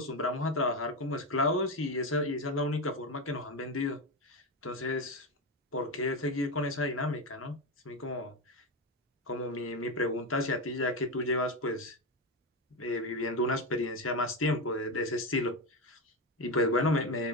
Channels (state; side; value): normal; both; correlation 0.14